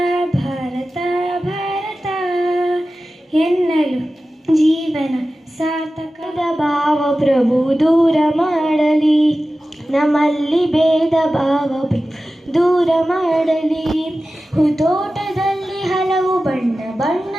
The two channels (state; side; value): normal; both; correlation 0.95